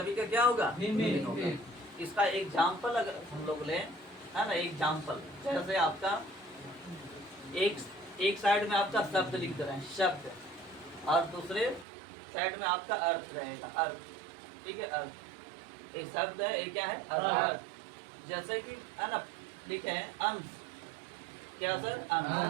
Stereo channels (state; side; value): drops out; left; at 11.9 s